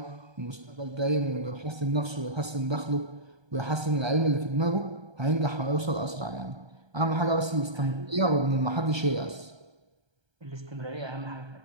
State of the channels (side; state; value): left; late; 1.3 ms